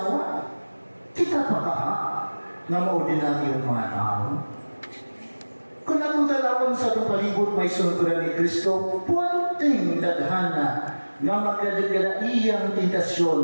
kita pa ka, na maordinaryong mga tao. Kung atong dalawang sa atong palibot may sunturan ni Kristo, puwanting daghana nga magkadagala iyang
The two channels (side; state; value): both; inverted; correlation -1.00